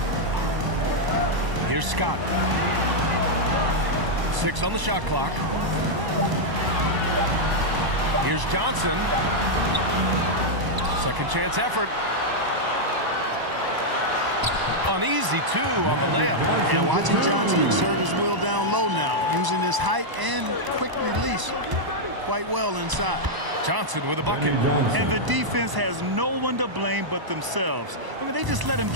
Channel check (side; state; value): left; late; 1.0 ms